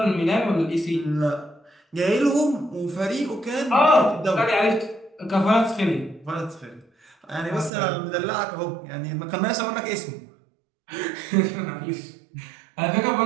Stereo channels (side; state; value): left; drops out; at 7.7 s